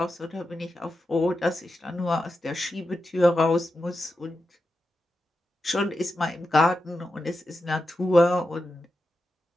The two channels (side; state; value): both; normal; correlation 0.89